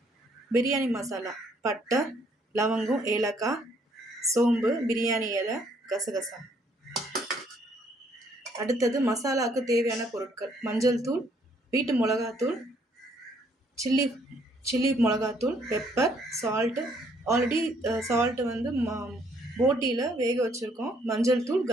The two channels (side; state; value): both; normal; correlation 0.66